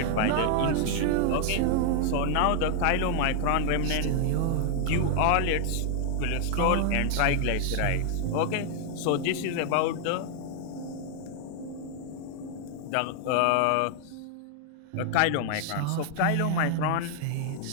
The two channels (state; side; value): different; both; correlation 0.00